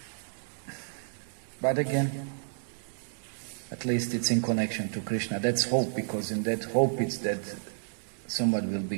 But again, at least it's in connection to Krishna. That's hope, because in that hope it's that someone will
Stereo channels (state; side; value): silent; left; digital silence